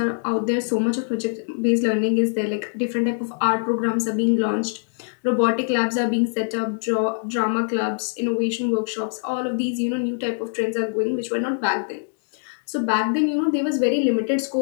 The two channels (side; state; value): right; silent; digital silence